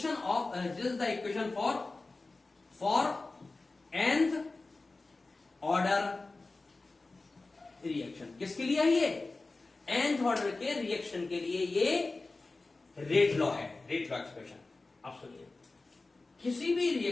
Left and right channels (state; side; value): quieter; right; 3.4 dB